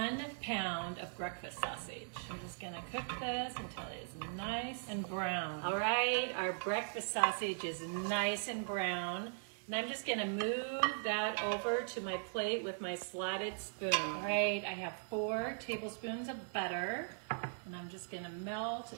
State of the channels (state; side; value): silent; left; digital silence